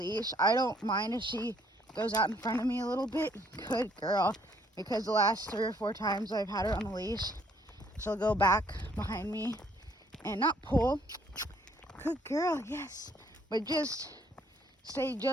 I don't mind if she goes out in front of me a little bit. Good girl. Because the last 3 or 4 times I've had her on the leash, she'll go back behind me and not pull. Good girl. Yes. But just stay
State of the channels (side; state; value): both; normal; correlation 0.64